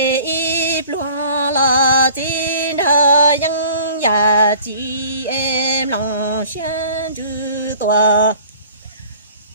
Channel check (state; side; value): inverted; both; correlation -0.49